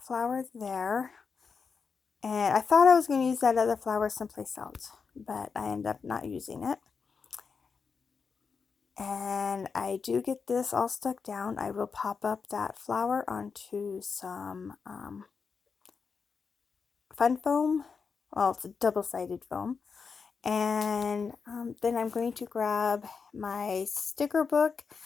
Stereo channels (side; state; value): right; quieter; 5.5 dB